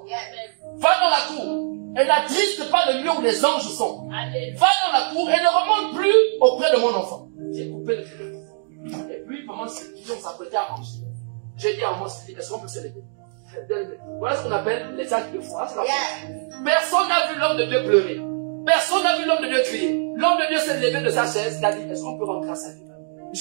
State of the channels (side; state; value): left; silent; digital silence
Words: Va dans la cour. Et n'attriste pas le lieu où les anges sont. Va dans la cour et ne remonte plus auprès de mon enfant. J'ai coupé le téléphone. Et puis, pendant ce temps, on s'apprêtait à manger. J'ai dit à moi, est-ce qu'on peut se lever? Voilà ce qu'on appelle les actes de foi. Personne n'a vu l'homme de Dieu pleurer. Personne n'a vu l'homme de Dieu crier. L'homme de Dieu s'est levé de sa chaise. Il a dit, est-ce qu'on peut rendre grâce à Dieu?